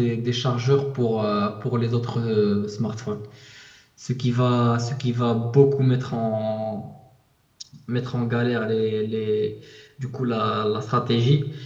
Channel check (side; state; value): both; identical; correlation 1.00